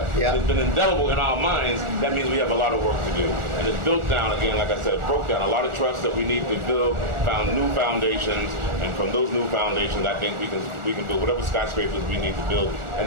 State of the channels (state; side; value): late; left; 1.4 ms